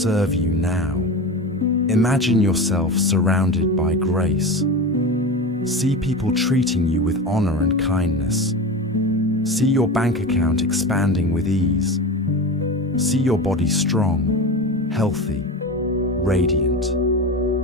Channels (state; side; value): normal; both; correlation 0.26